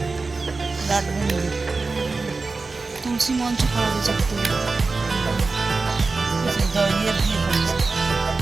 রাত মন্দির। তুলসী মঞ্চ করা হয়েছে। ইয়ে দিয়ে করেছে।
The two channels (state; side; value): quieter; left; 3.9 dB